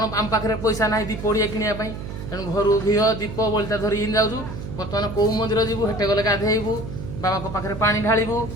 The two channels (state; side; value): noise; right; hum, 9 dB below the sound